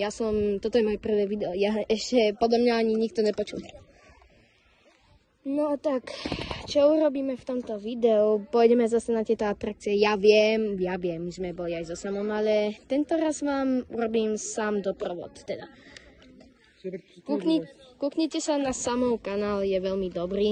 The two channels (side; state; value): both; identical; correlation 1.00